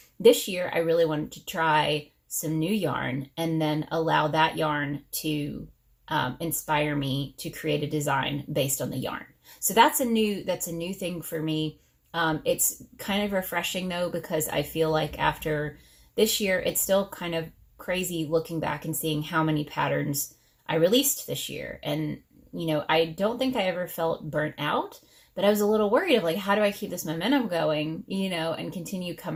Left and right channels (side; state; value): both; identical; correlation 1.00